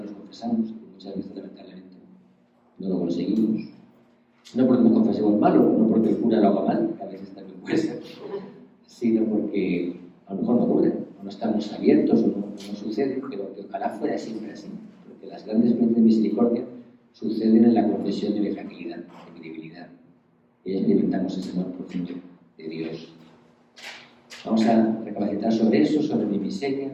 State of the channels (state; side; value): identical; both; correlation 1.00